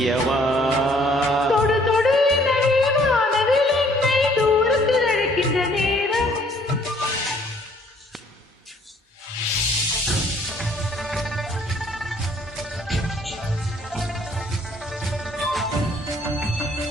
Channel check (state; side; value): normal; both; correlation 0.61